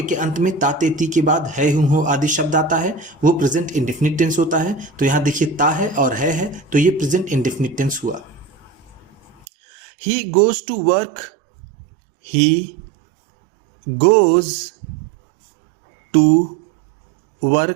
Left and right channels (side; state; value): left; drops out; at 9.5 s